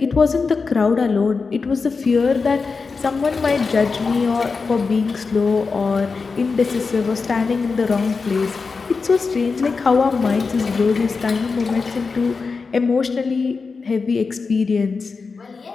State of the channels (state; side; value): quieter; right; 4.6 dB